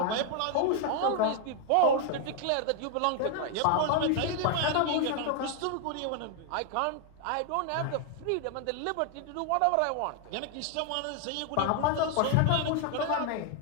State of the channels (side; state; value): both; different; correlation 0.00